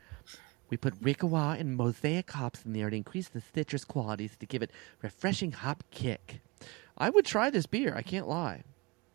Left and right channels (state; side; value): quieter; left; 26.2 dB